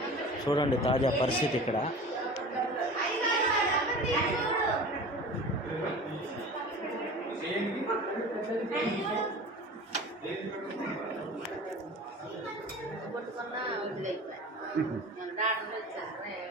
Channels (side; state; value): both; normal; correlation 0.38